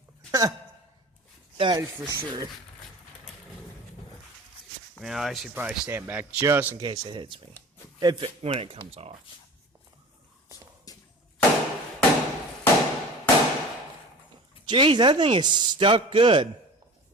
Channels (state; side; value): normal; both; correlation 0.39